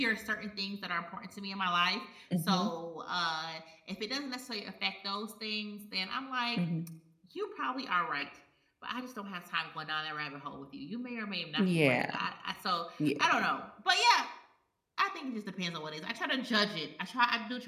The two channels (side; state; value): both; identical; correlation 1.00